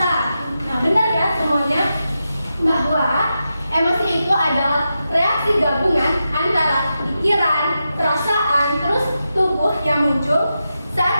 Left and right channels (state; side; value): inverted; both; correlation -0.89